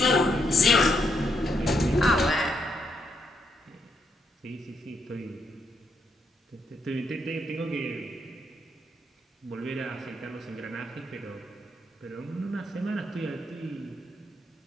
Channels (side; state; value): both; normal; correlation 0.77